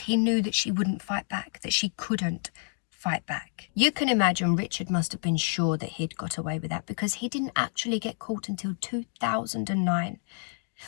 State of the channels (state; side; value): silent; right; 56 dB below the other